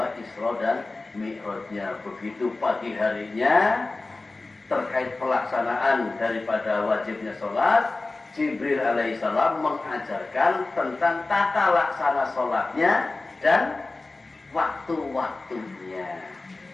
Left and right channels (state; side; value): quieter; right; 3.3 dB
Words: Isra dan Mi'rajnya. Begitu pagi harinya terkait pelaksanaan daripada wajibnya sholat, Jibril alaihissalam mengajarkan tentang tata laksana sholatnya dan waktu-waktunya.